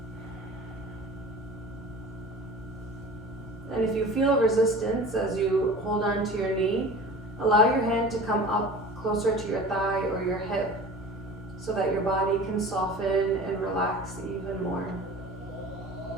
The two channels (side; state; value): both; normal; correlation 0.39